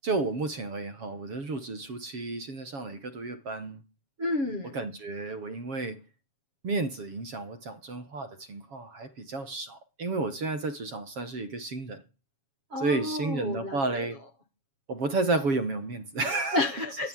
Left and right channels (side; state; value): left; late; 7.3 ms